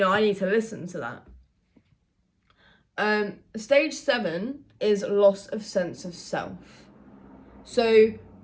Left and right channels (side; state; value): both; identical; correlation 1.00